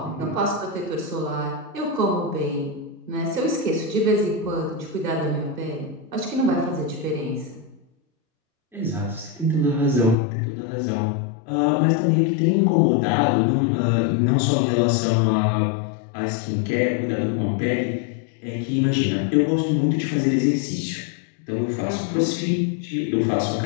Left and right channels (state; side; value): drops out; right; at 10.2 s